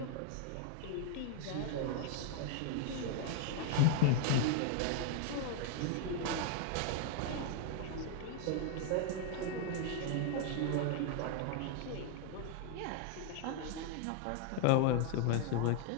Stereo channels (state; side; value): different; both; correlation 0.00